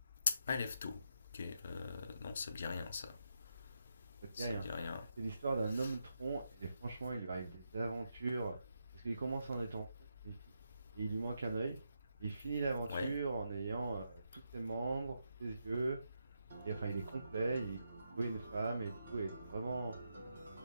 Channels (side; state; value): both; inverted; correlation -0.83